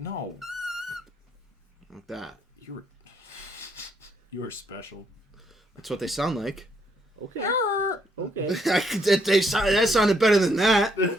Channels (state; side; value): normal; both; correlation 0.72